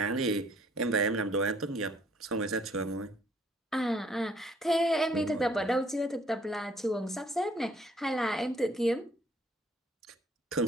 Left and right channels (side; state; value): both; normal; correlation 0.62